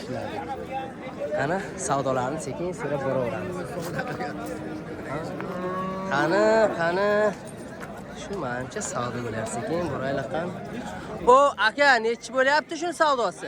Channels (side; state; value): both; identical; correlation 1.00